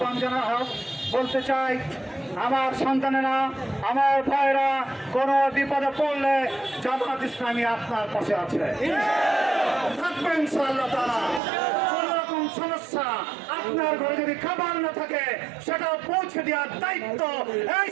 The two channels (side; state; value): left; drops out; at 11.4 s